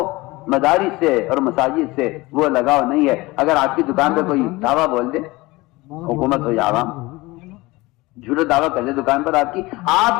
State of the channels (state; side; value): quieter; right; 21.4 dB